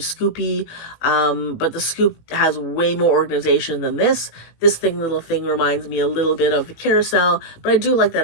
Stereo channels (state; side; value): late; right; 18 ms